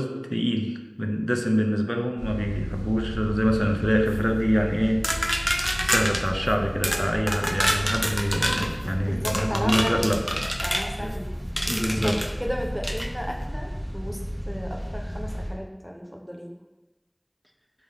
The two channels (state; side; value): identical; both; correlation 1.00